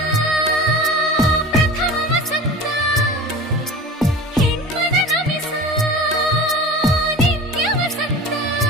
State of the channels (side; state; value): both; normal; correlation 0.35